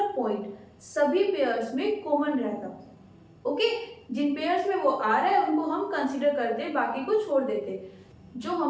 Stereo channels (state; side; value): identical; both; correlation 1.00